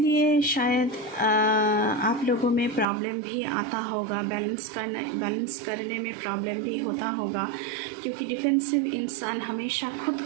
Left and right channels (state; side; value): drops out; left; at 2.9 s